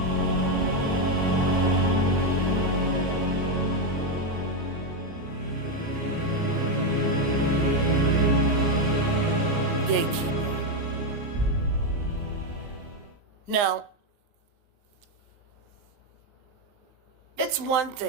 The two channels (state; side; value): late; left; 19 ms